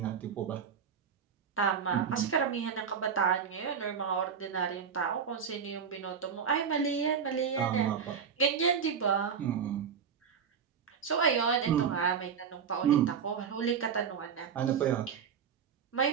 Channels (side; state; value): left; quieter; 6.9 dB